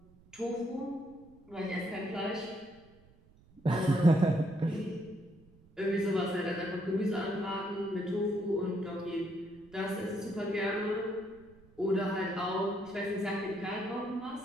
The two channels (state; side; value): noise; right; rumble, 27 dB below the sound